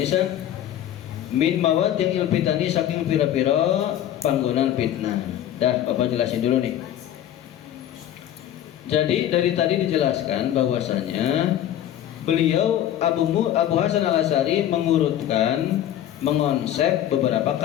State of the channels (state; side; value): quieter; right; 11.4 dB